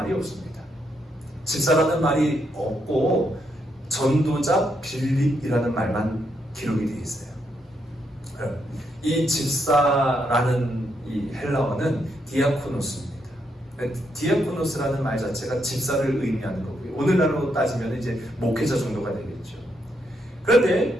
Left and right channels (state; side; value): normal; both; correlation 0.78